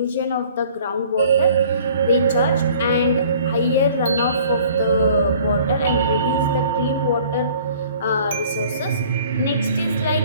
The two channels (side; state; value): both; inverted; correlation -0.52